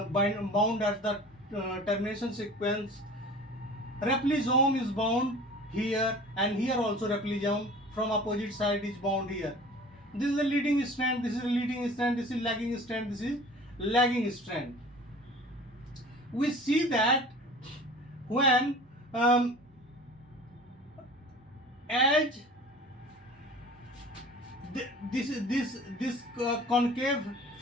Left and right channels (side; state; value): both; normal; correlation 0.42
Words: at the termination sequence. Replisome is bound here, and here also replisome from opposite side is bound here. This is the leading strand, this is the leading strand, this is lagging strand, this is lagging strand. We see that when as this concave